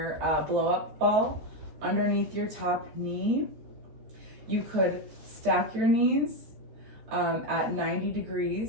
blow up ball underneath your top knee. You could stack your knees at 90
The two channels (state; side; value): late; left; 13 ms